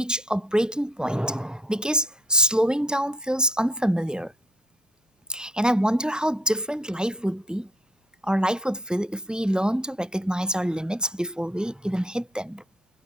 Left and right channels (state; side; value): normal; both; correlation 0.64